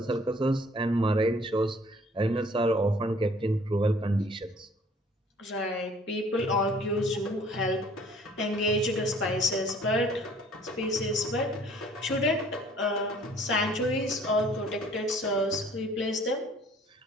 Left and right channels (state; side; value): normal; both; correlation 0.55